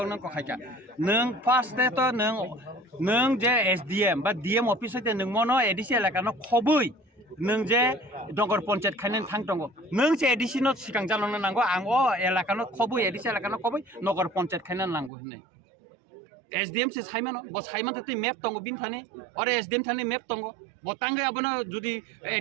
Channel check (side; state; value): left; drops out; at 15.1 s